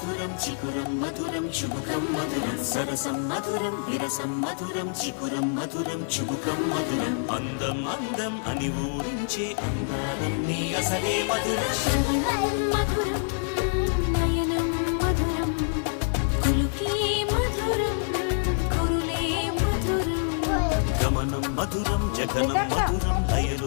చికురం మధురం చుబుకం మధురం సరసం మధురం విరసం మధురం చికురం మధురం చుబుకం మధురం అందం అందం అని ఊరించే అందాలన్నీ అసలే మధురం శ్రవణం మధురం నయనం మధురం కులుకే మధురం కురులే మధురం గమనం మధురం జగనం మధురం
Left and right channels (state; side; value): silent; right; 61 dB below the other